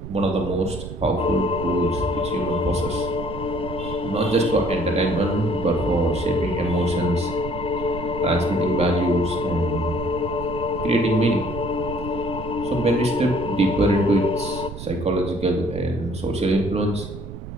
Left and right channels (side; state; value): right; noise; rumble, 10 dB below the sound